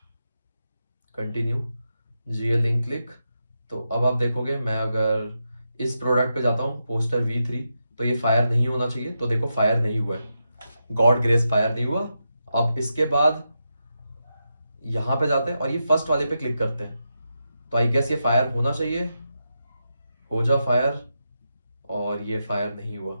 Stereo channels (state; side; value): inverted; both; correlation -0.87